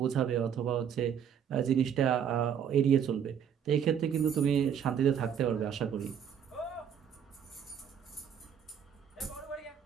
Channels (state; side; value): quieter; left; 8.4 dB